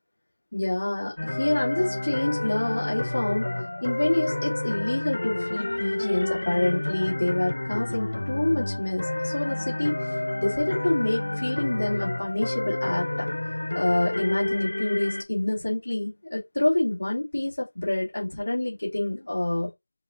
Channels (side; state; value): both; inverted; correlation -1.00